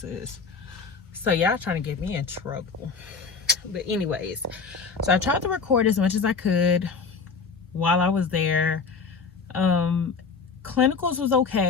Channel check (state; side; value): quieter; right; 5.1 dB